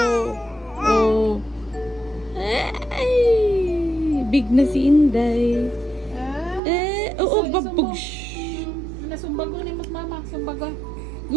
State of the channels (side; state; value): left; drops out; at 6.6 s